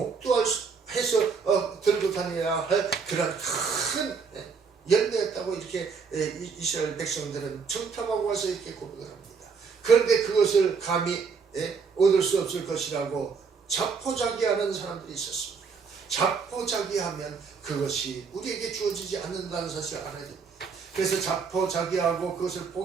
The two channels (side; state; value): left; quieter; 5.5 dB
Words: 들고 다녀야 할 그런 큰 열매였다고 이렇게 이스라엘 백성들은 청탐하고 와서 이렇게 고백을 합니다. 그런데 그것을 감히 얻을 수 없을 것이라고 자포자기하는 사람들이 있었습니다. 자포자기하면 그것이 우리에게 주어지지 않는다는 사실을 알아야 됩니다. 그래서 자포자기하고 그것을